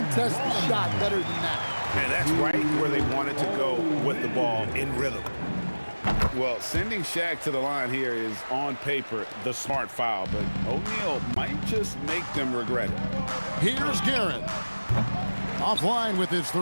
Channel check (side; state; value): both; inverted; correlation -1.00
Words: the shot better than that. And that's right where they wanted to go with the ball in rhythm. Well, sending Shaq to the line here is on paper the smart foul, but O'Neal might just make them regret it. Here's Guerin. Offline with his